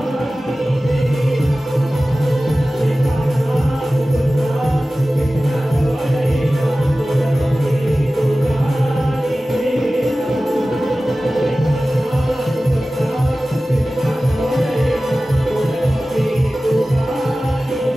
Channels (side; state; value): both; normal; correlation 0.96